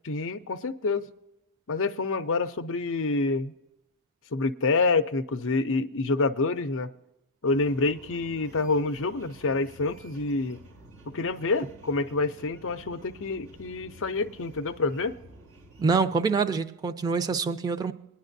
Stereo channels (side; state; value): both; normal; correlation 0.01